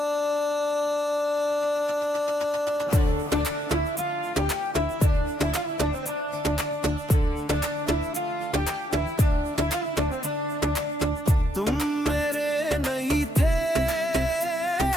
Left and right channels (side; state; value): both; normal; correlation 0.75